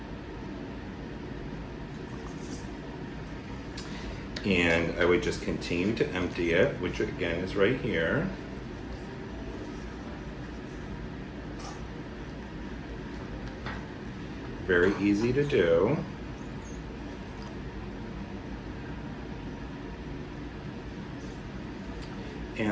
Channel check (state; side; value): identical; both; correlation 1.00